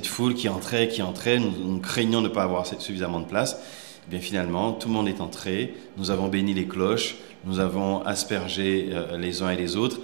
foule qui entrait, nous craignons de ne pas avoir suffisamment de place. Et bien finalement, tout le monde est entré, nous avons béni les cloches, nous avons aspergé les uns et les autres,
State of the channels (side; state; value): left; silent; digital silence